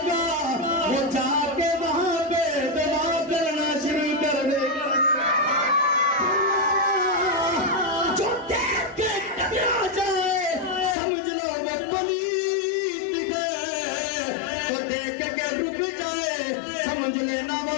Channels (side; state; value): right; drops out; at 11.0 s